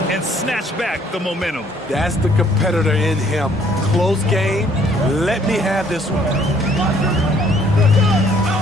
and snatch back the momentum. That's the competitor in him. Close game. Let me have this one.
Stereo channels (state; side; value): normal; both; correlation 0.62